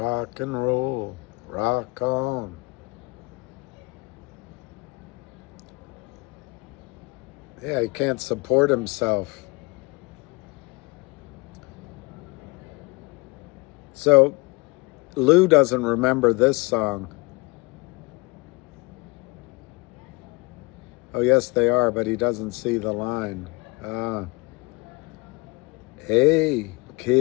and roll, rock on. Yeah, he can't support himself. So Lou doesn't remember this song. Oh, yes, they are, but he doesn't see the line. Hey,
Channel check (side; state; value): right; quieter; 26.8 dB